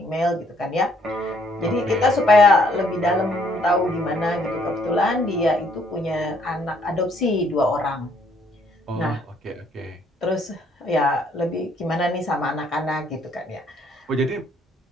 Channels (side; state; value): both; normal; correlation 0.66